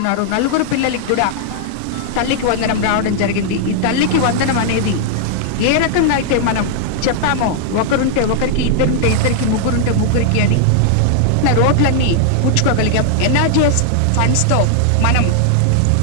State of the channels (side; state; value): both; different; correlation -0.01